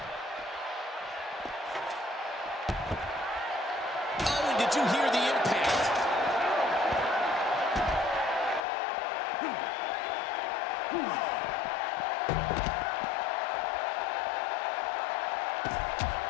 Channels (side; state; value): right; drops out; at 8.6 s